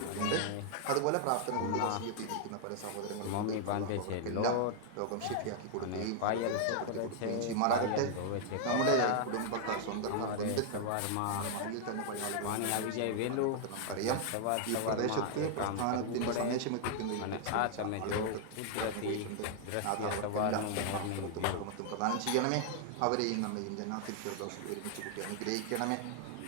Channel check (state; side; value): different; both; correlation 0.00